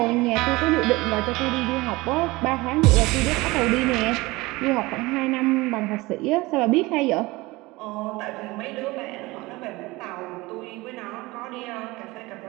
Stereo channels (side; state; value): left; quieter; 21.6 dB